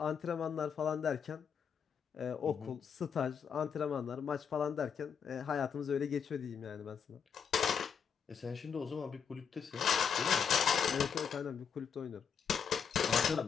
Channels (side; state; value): right; quieter; 7.1 dB